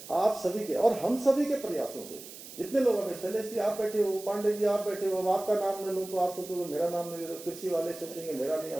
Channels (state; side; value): noise; right; hiss, 15 dB below the sound